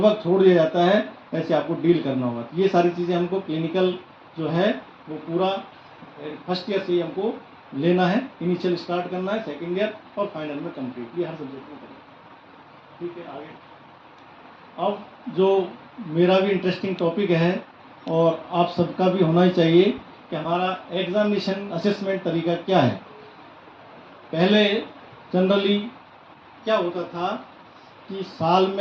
छोड़ दिया जाता है, ऐसे आपको डील करना होगा। ये सारी चीज़ें हमको क्लिनिकल जो है वो पूरा फर्स्ट ईयर से ही हमको लेना है, इनिशियल स्टार्ट करना है, सेकेंड ईयर और फाइनल में कंप्लीट, ये हर सब्जेक्ट में करेंगे। ठीक है, आगे अब जो मेरा भी इंटरेस्टिंग टॉपिक है और आप सबका भी होना ही चाहिए कि हमारा एग्जामिनेशन असेसमेंट तरीका क्या है। पहले जनरली क्या होता था कि साल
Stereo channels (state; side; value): identical; both; correlation 1.00